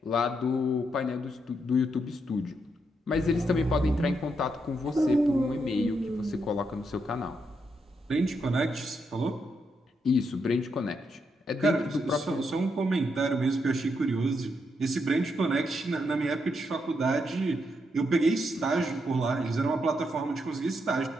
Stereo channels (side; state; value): both; normal; correlation 0.80